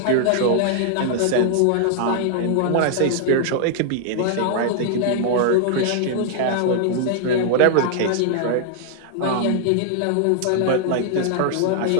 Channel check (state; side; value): different; both; correlation -0.01